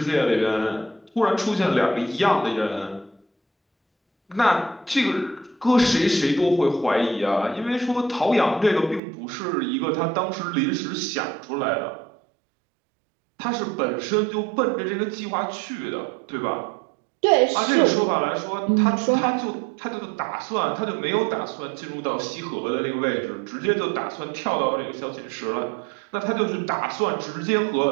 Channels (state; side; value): drops out; left; at 9.0 s